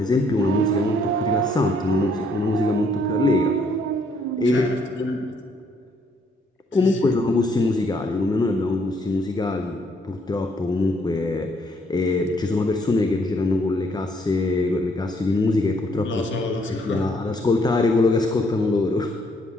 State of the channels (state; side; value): normal; both; correlation 0.68